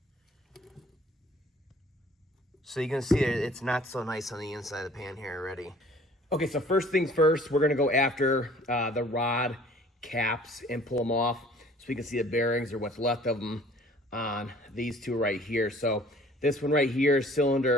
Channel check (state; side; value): normal; both; correlation 0.53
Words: So you can see it's not so nice on the inside of the pan here already. Okay, so first things first, we're gonna go after the rod caps and pull them off so we can see the bearings or what's left of them on these two right here. So this one right here,